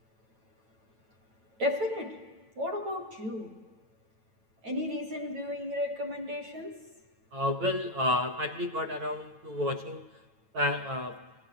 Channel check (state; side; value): late; left; 9.1 ms